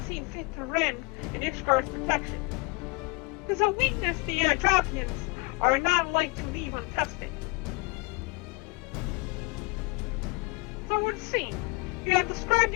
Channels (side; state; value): right; quieter; 26.8 dB